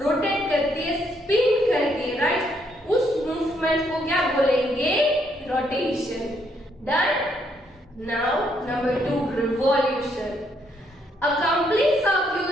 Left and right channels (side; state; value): both; normal; correlation 0.73